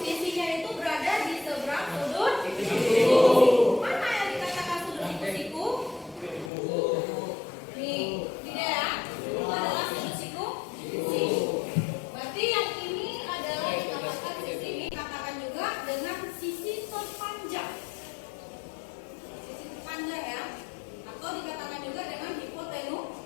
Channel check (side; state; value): right; drops out; at 6.5 s